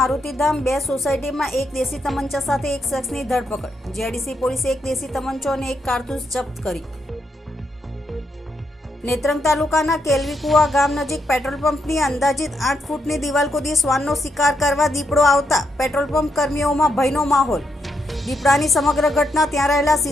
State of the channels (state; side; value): normal; both; correlation 0.80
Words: 2 સોસાયટીમાં એક દેશી તમંચા સાથે એક શખ્સની ધરપકડ. જીઆઈડીસી પોલીસે એક દેશી તમંચો અને એક કારતૂસ જપ્ત કરી. નેત્રંગ તાલુકાના કેલવીકુવા ગામ નજીક પેટ્રોલ પંપની અંદાજિત 8 ફૂટની દિવાલ કૂદી શ્વાનનો શિકાર કરવા દીપડો આવતા પેટ્રોલ પંપ કર્મીઓમાં ભયનો માહોલ. દીપડાની સમગ્ર ઘટના ત્યાં રહેલા